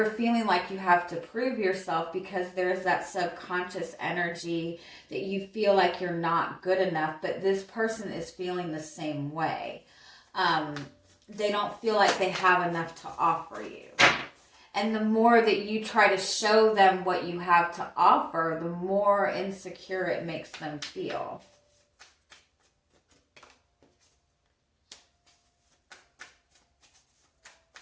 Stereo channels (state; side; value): identical; both; correlation 1.00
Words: feeling like you have to prove yourself because there's that subconscious energy that you feel like you're not good enough, but this person is feeling the same way. They don't feel like they have enough to offer you. And the more that you try to show them what you have to offer, the more insecure it makes them feel.